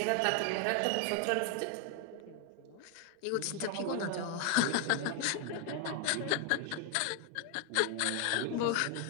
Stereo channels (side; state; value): both; different; correlation 0.00